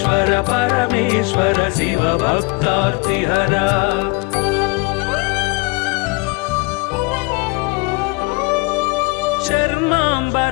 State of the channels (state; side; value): quieter; right; 28.4 dB